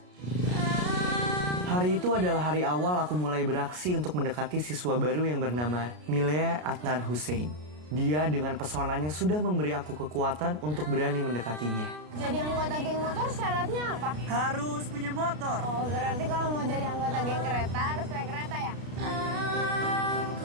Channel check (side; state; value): left; late; 33 ms